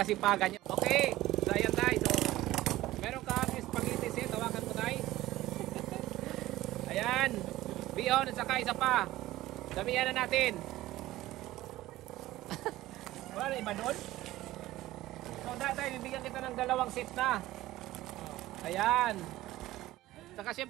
niyo. Okay, so ayan tayo. So, meron kang spaghetti set, tawakan mo tayo. Ayan. Bion at saka isa pa. Damihan na natin. Wala na iba doon? So tayo, bibigyan kita ng 2 set na. Ayan. Saka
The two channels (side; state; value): left; quieter; 16.3 dB